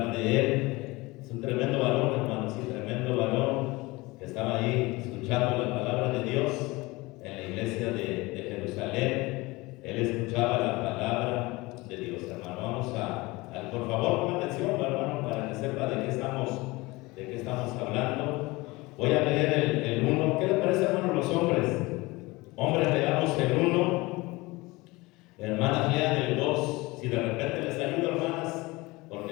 de él. Es un tremendo varón, hermano, sí, tremendo varón que estaba ahí escuchando la palabra de Dios en la iglesia de Jerusalén. Él escuchaba la palabra de Dios, hermano. Vamos a por favor, pongan atención, hermano, para que sepa de qué estamos hablando. Voy a leer el 1. ¿Qué les parece, hermano, los hombres? Hombres, leamos el 1. Hermanas, lean el 2. Si de repente les ayudo, hermanas,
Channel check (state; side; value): quieter; right; 22.4 dB